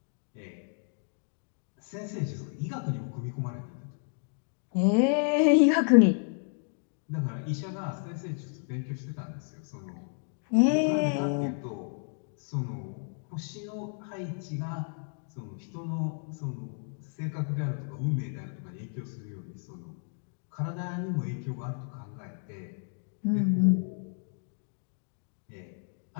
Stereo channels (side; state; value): right; silent; 57 dB below the other